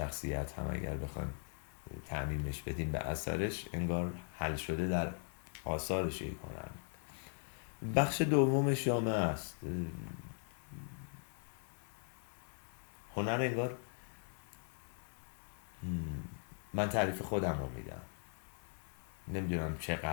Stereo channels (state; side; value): silent; right; 51 dB below the other